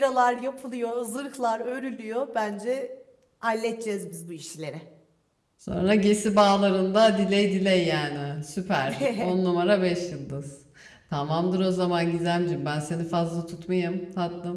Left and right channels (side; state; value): both; identical; correlation 1.00